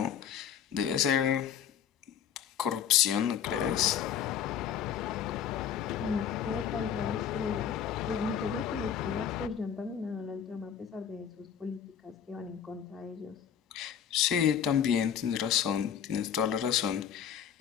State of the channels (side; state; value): right; quieter; 8.7 dB